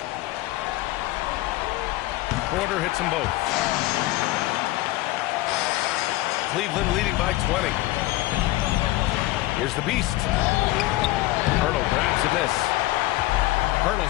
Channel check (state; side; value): quieter; right; 17.9 dB